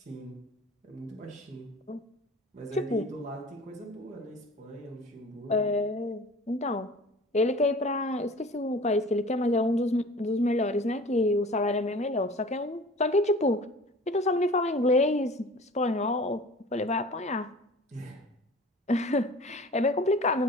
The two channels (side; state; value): both; normal; correlation 0.43